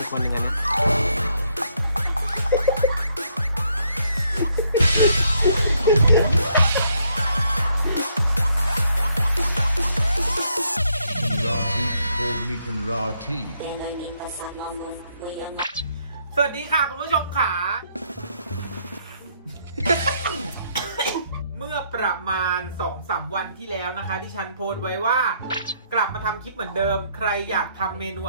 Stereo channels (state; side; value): inverted; both; correlation -0.71